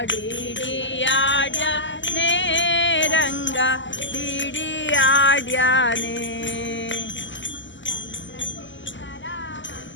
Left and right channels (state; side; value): late; right; 0.54 ms